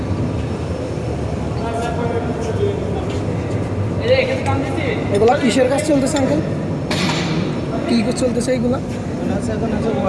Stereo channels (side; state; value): both; identical; correlation 1.00